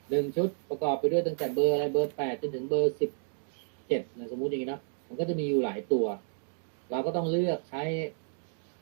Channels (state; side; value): silent; left; 57 dB below the other